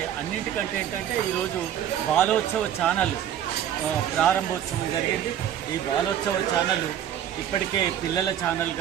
అన్నింటికంటే ఏంటంటే ఈరోజు బాలోత్సవ ఛానల్ ప్రారంభోత్సవం జరిగింది. ఈ బాలోత్సవ ఛానల్ ఇప్పటికే పిల్లల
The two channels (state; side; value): quieter; left; 10.3 dB